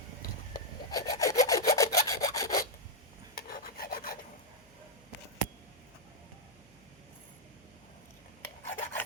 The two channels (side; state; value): left; noise; hum, 29 dB below the sound